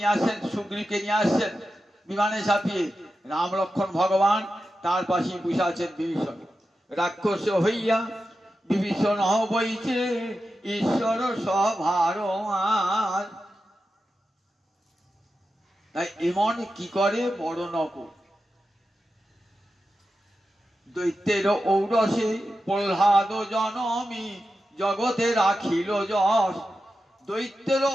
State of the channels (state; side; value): normal; both; correlation 0.90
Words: আসছেন, সুগ্রীবকে নিয়ে আসছেন বিমানে চাপিয়ে। রাম লক্ষ্মণ ভগবান তার পাশে বসে আছেন বিভীষণ। রাক্ষস হইয়া বিভীষণ বইছে ঈশ্বর সভার মাঝ। তাই এমন কি করে বড় নকুল, দৈত্যের ঔরসে প্রহ্লাদ জনমী জগতে রাখিল যশ। দৈত্যের